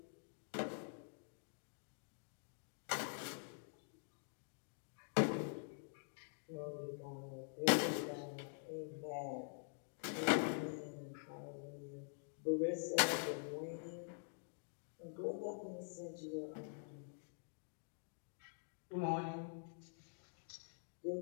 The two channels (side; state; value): right; silent; digital silence